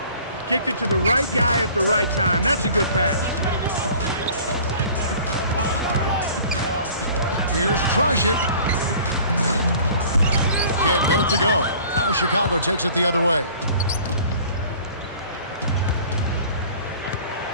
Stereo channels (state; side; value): inverted; both; correlation -0.48